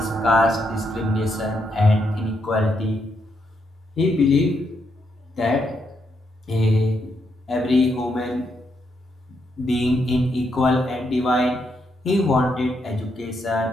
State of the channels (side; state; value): both; normal; correlation 0.79